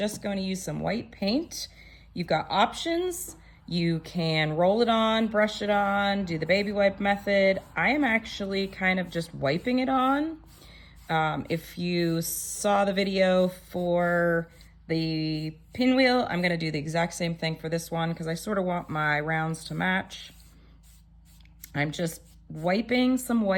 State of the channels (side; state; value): both; identical; correlation 1.00